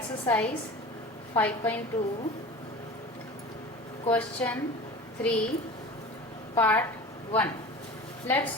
5.2 question 3 part 1. Let's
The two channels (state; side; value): normal; both; correlation 0.36